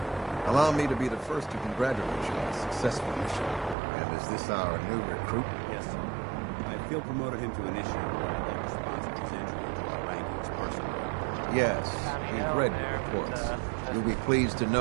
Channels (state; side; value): drops out; left; at 3.8 s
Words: Allow me to be the first to congratulate you on a successful mission. And is this our new recruit? Yes, sir. I feel promoted him to initiate, but I'd like to sponsor his entry into our rankings personally. Yes, we've read your reports. You'll be pleased to